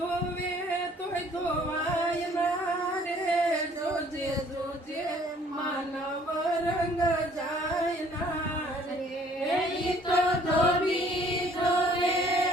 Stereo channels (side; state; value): both; normal; correlation 0.58